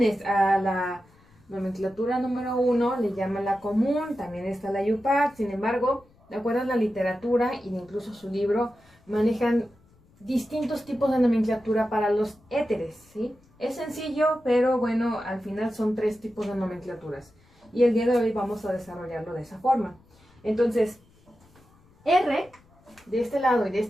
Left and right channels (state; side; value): noise; left; rumble, 30 dB below the sound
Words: a la nomenclatura número 1 le llaman la común, también está la IUPAC. Sin embargo, de acuerdo a la literatura e incluso su libro, manejan distintos tipos de nomenclatura para los éteres, ¿sí? Es sencillo, pero bueno, al final son tres tipos de nomenclaturas. Y el día de hoy vamos a desarrollarlo de esa forma. Entonces, R de este lado y de